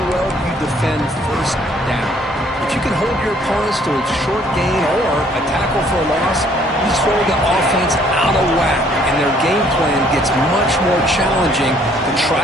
well you defend first down. If you can hold your opponents to a short gain or a tackle for a loss, you throw the offense out of whack, and their game plan gets much more challenging to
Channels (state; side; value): normal; both; correlation 0.62